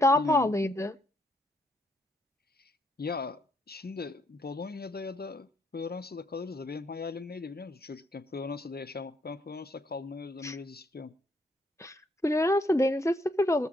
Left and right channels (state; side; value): normal; both; correlation 0.72